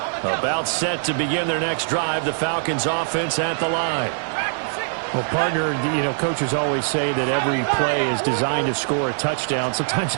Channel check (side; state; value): left; silent; 63 dB below the other